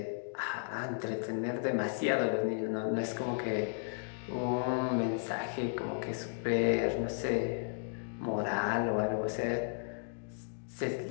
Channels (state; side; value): silent; right; digital silence